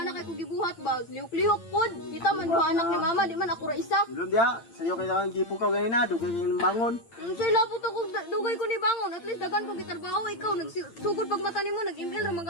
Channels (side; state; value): right; late; 8.8 ms